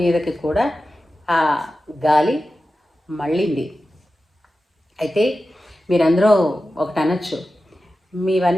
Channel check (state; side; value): normal; both; correlation 0.93